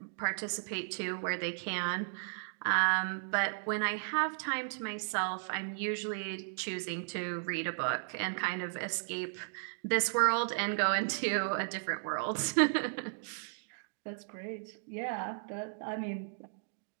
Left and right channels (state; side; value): silent; left; digital silence